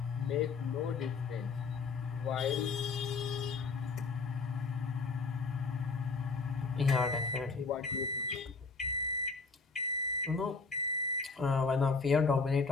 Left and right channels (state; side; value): quieter; right; 4.4 dB